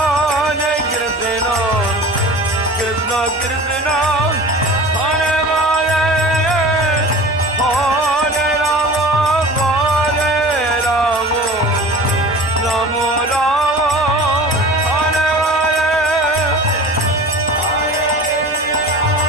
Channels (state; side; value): normal; both; correlation 0.38